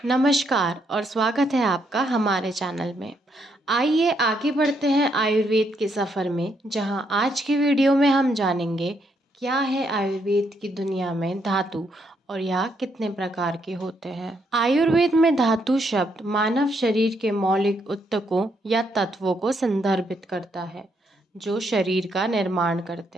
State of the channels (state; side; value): normal; both; correlation 0.75